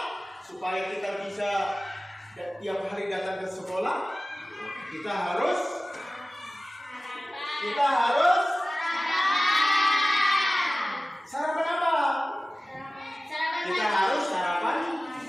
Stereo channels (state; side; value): normal; both; correlation 0.97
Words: supaya kita bisa tiap hari datang ke sekolah, kita harus sarapan apa? Kita harus sarapan